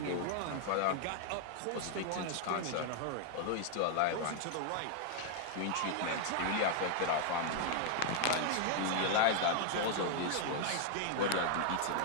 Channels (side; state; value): both; different; correlation 0.00